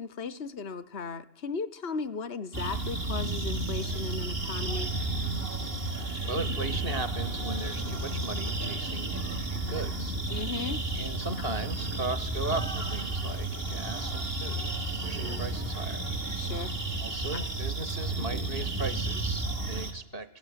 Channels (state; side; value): late; right; 2.8 ms